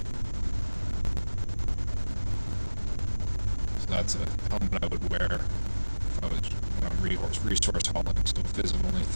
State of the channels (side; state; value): both; inverted; correlation -1.00